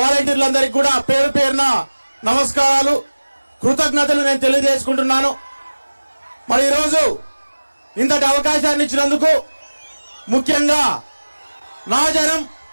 కూడా పేరు పేరున నమస్కారాలు, కృతజ్ఞతలు నేను తెలియజేసుకుంటున్నాను. మరి ఈరోజు ఇంతటి అవకాశాన్ని ఇచ్చినందుకు, ముఖ్యంగా నా జనం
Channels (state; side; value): inverted; both; correlation -1.00